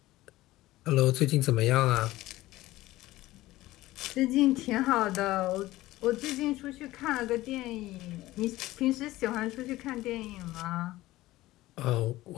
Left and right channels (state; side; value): quieter; right; 17.2 dB